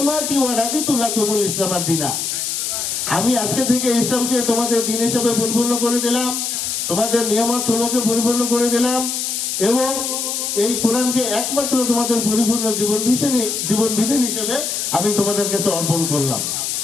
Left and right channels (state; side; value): noise; left; hiss, 2 dB below the sound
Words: ওয়া রাদিতু লাকুমুল ইসলাম দীনা, আমি আজকে থেকে ইসলামকে তোমাদের দ্বীন হিসেবে পরিপূর্ণ করে দিলাম, তোমাদের নিয়ামত সমূহকে পরিপূর্ণ করে দিলাম, এবং এই কোরআনকে একমাত্র তোমাদের পরিপূর্ণ জীবন বিধান হিসেবে আমি তোমাদের কাছে অর্পণ করলাম।